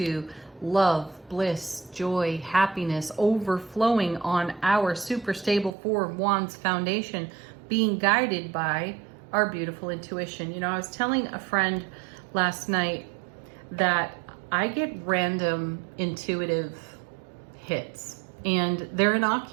love, bliss, joy, happiness, overflowing on our super stable Four of Wands foundation, being guided by our beautiful intuition. You know, I was telling a friend last night that I get random intuitive hits, and they're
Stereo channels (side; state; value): left; drops out; at 5.7 s